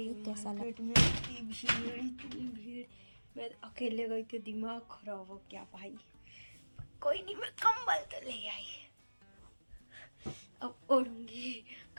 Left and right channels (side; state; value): both; inverted; correlation -1.00